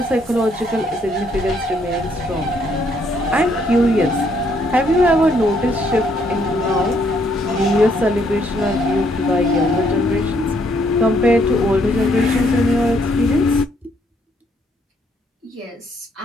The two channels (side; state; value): both; normal; correlation 0.70